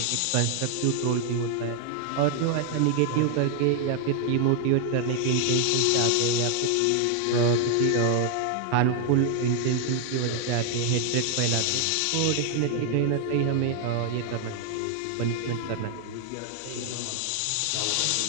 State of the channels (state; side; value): different; both; correlation 0.00